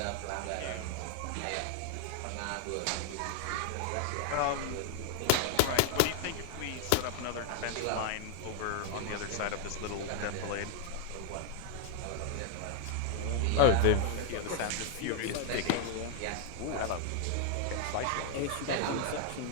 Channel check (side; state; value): both; different; correlation 0.00